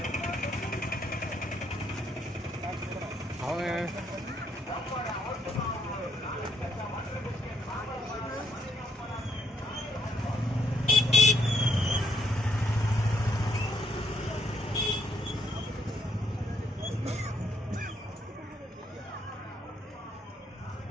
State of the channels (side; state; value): both; normal; correlation 0.71